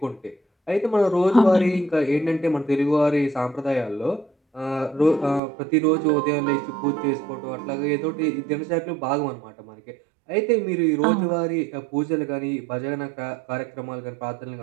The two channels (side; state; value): left; drops out; at 5.4 s